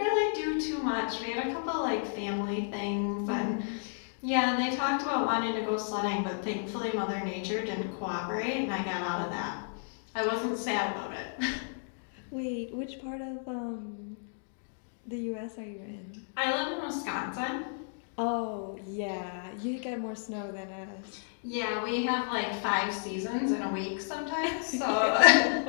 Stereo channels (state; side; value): silent; right; digital silence